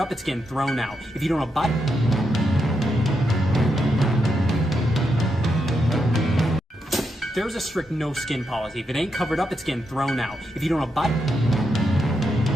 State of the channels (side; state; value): both; normal; correlation 0.83